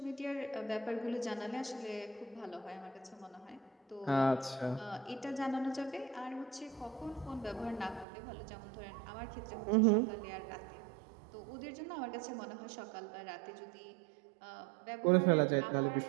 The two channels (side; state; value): left; drops out; at 8.1 s